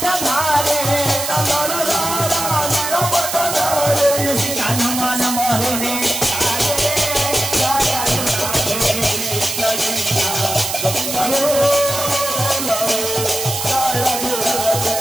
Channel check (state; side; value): noise; right; hiss, 4 dB below the sound